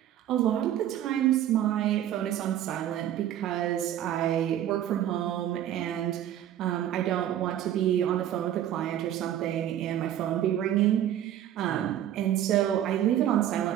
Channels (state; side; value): quieter; left; 11.4 dB